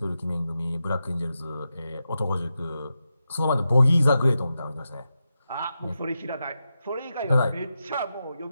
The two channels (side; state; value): both; inverted; correlation -0.89